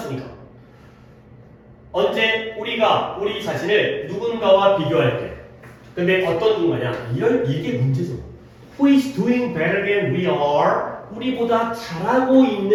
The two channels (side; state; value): both; identical; correlation 1.00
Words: 언제 우리가 우리 자신을 누군가와 비교할 때 근데 어떤 누군가냐 이게 문제죠. Who is doing better than we are 우리보다 잘하고